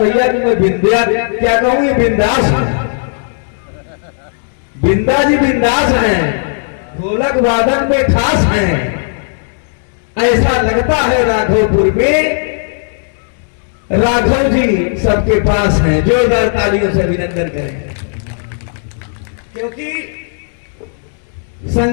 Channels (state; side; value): silent; right; 68 dB below the other